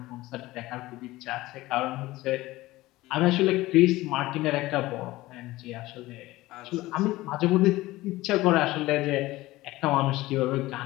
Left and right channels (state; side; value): quieter; right; 18.2 dB